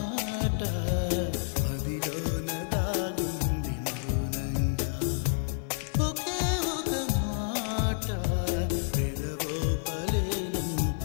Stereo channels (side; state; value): right; silent; digital silence